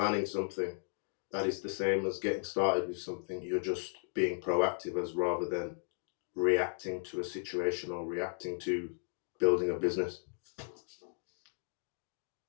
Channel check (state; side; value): silent; right; 54 dB below the other